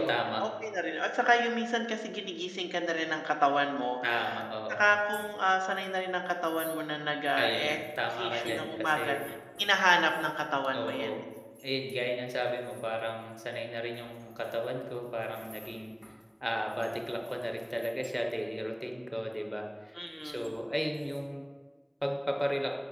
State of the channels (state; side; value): identical; both; correlation 1.00